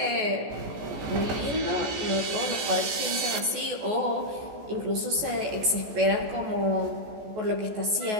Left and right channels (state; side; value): late; left; 14 ms